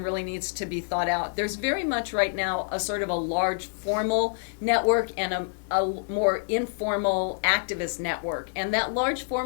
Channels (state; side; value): silent; right; digital silence